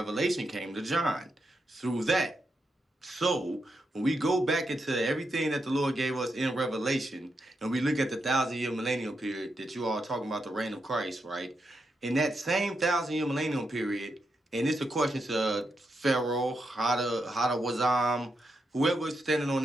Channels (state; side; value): normal; both; correlation 0.84